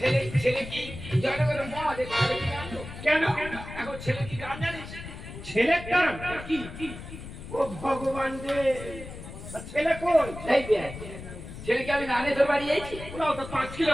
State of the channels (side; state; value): left; noise; rumble, 12 dB below the sound